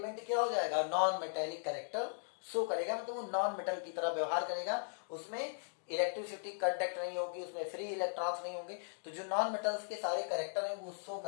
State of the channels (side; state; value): right; silent; digital silence